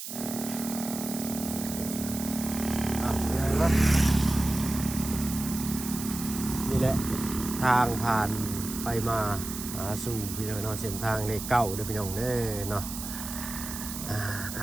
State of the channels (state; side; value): noise; right; hiss, 8 dB below the sound